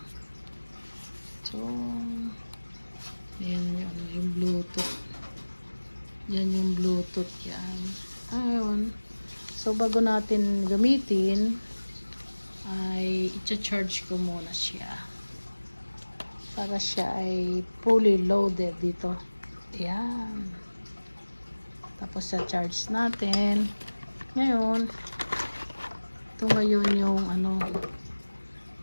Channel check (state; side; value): inverted; both; correlation -1.00